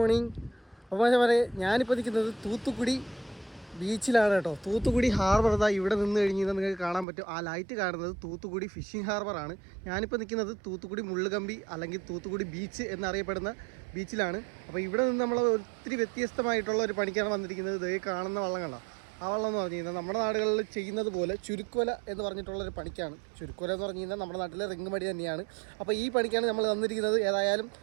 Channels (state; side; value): drops out; left; at 7.1 s